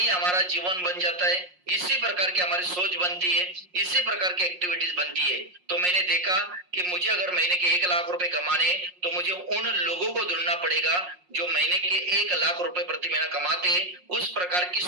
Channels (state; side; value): late; left; 5.6 ms